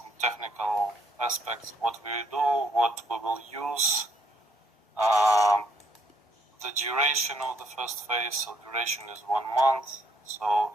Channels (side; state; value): both; normal; correlation 0.68